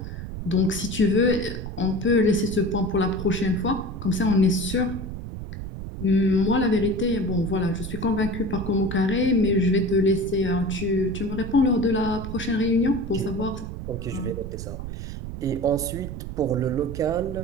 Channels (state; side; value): noise; right; rumble, 8 dB below the sound